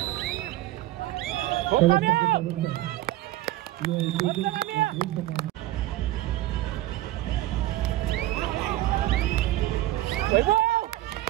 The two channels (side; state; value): left; quieter; 15.4 dB